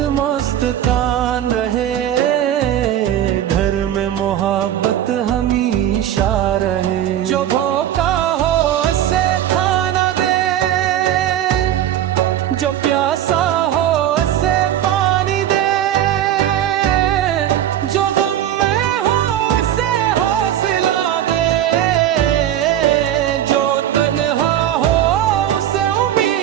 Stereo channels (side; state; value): left; quieter; 11.4 dB